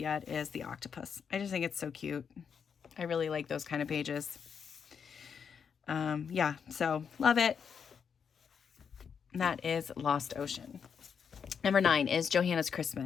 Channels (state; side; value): quieter; right; 6.8 dB